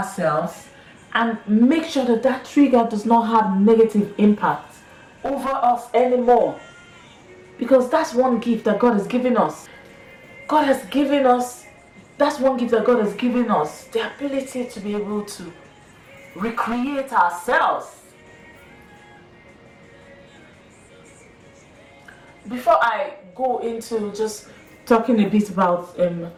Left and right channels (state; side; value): identical; both; correlation 1.00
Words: and make sure that that trigger does not have negative impact over us anymore. Because that's one gift that God has given us. God has given us, that's one gift that God has given us, the ability to be able to recreate ourselves. Before I go into just talking a bit about